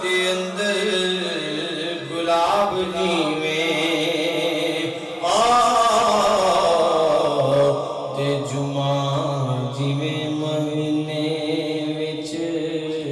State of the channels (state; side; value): identical; both; correlation 1.00